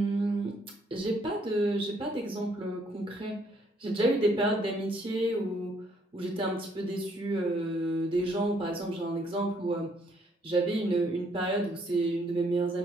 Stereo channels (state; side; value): normal; both; correlation 0.68